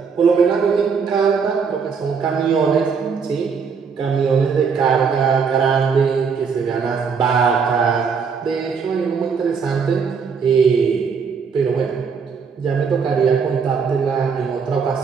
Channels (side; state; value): left; quieter; 5.8 dB